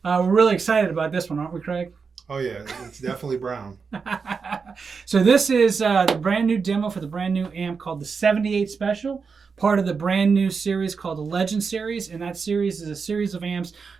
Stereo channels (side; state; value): left; quieter; 5.3 dB